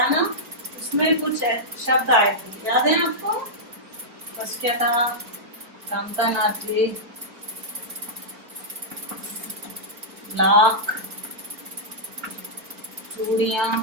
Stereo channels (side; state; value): left; late; 4.2 ms